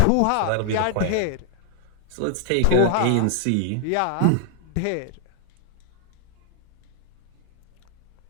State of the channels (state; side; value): different; both; correlation 0.00